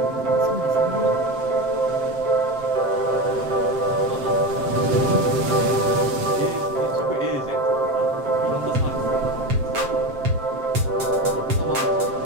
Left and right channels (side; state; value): left; late; 7.5 ms